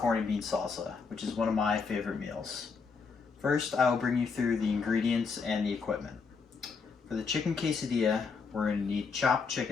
and bean salsa, which is one of my favorite meals. First, I will bring you through the ingredients and the equipment. For the chicken quesadilla, we're going to need chopped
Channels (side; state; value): right; quieter; 5.1 dB